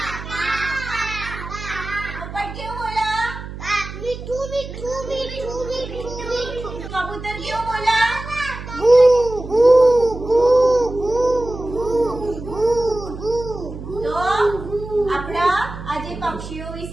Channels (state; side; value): noise; right; hum, 11 dB below the sound